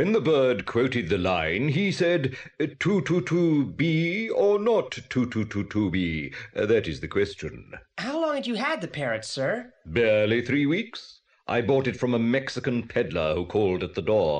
the bird quoted the line, he said, "To-to-to-be or not to-to-to-to-be?" That is the question. How long had you had the parrot, sir? Barely 3 weeks. I bought it from a Mexican peddler who called at the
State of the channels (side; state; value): both; identical; correlation 1.00